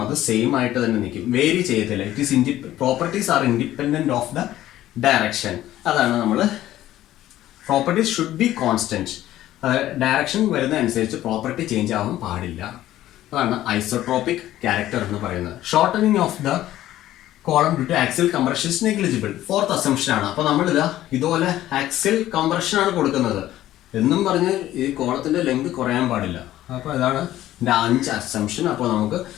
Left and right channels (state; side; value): quieter; right; 13.9 dB